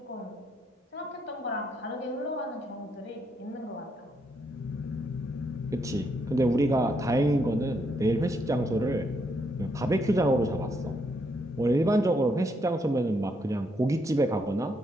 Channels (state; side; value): normal; both; correlation 0.76